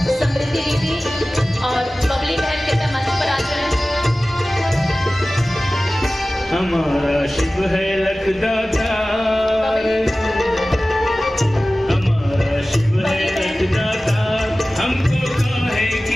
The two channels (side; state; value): both; normal; correlation 0.97